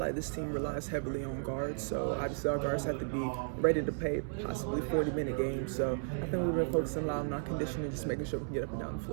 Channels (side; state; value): left; silent; 55 dB below the other